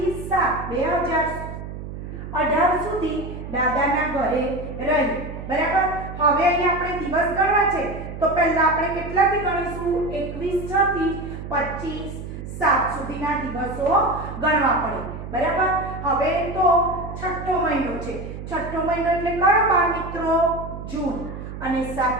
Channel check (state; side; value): noise; right; hum, 9 dB below the sound